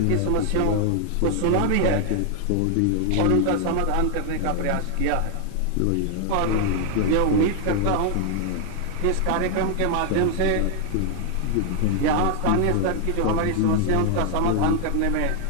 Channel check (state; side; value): different; both; correlation 0.00